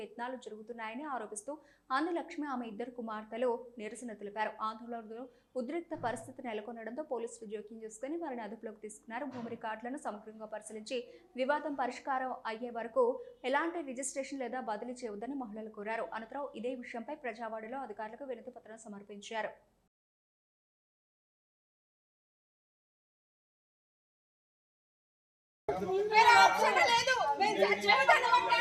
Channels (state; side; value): identical; both; correlation 1.00